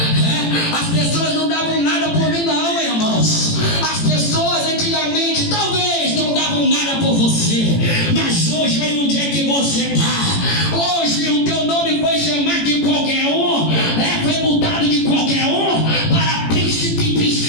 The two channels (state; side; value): late; right; 18 ms